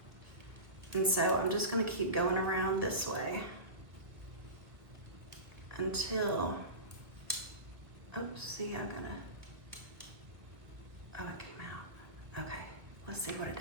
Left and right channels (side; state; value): left; late; 1.6 ms